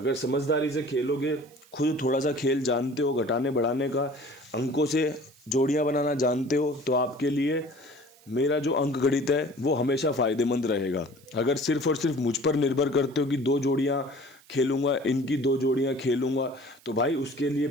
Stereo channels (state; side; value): noise; right; hiss, 27 dB below the sound